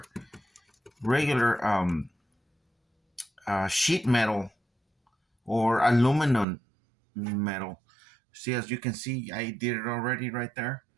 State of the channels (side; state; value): left; drops out; at 6.5 s